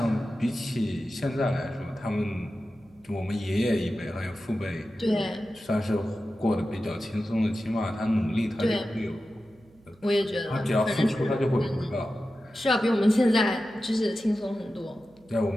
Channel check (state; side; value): noise; right; hum, 29 dB below the sound